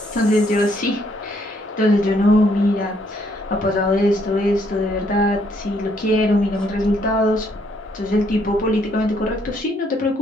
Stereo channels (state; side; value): normal; both; correlation 0.69